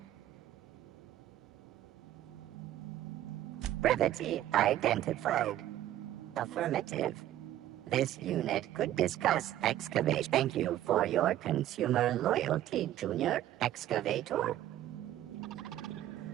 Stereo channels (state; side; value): quieter; left; 12.9 dB